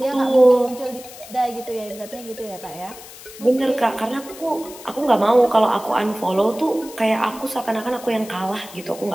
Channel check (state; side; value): noise; left; hiss, 17 dB below the sound